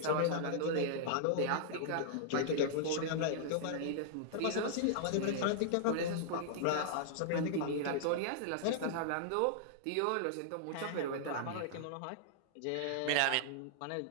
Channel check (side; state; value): both; different; correlation -0.01